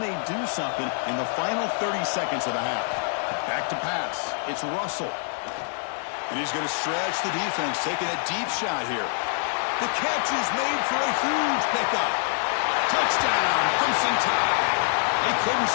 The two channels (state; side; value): silent; right; 61 dB below the other